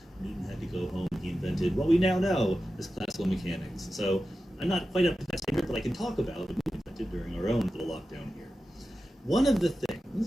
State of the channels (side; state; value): both; normal; correlation 0.93